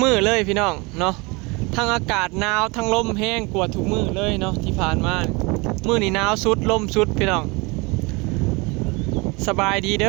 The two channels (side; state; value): left; quieter; 26.7 dB